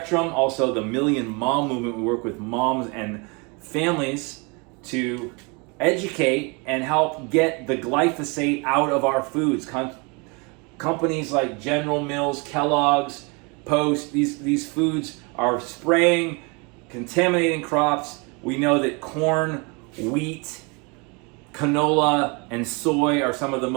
Also the Million Mom Movement. We work with moms and families to educate and help get the glyphosate out of our foods. Companies like General Mills, Kellogg's, Post, these foods are spraying, contaminating crops. We know that corn, wheat, canola, and soy are some of the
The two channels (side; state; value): left; quieter; 30.6 dB